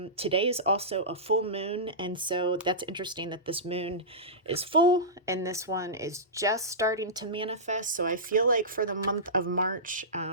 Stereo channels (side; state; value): both; normal; correlation -0.18